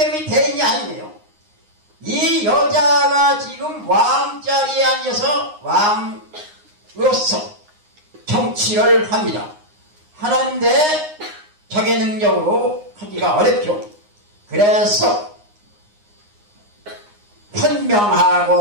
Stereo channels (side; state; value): left; late; 9.7 ms